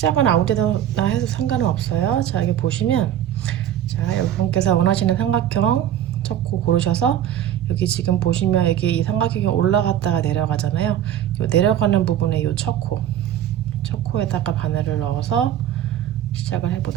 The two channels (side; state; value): left; quieter; 11.0 dB